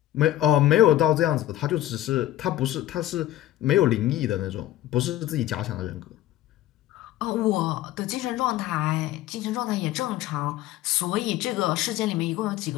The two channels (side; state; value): right; quieter; 13.9 dB